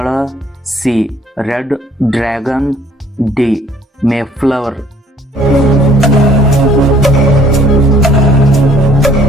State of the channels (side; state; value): both; normal; correlation 0.59